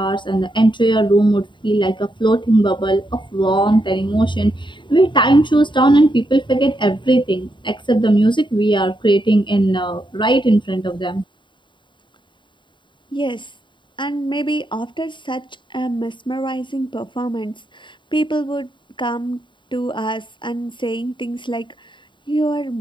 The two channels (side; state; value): right; late; 0.23 ms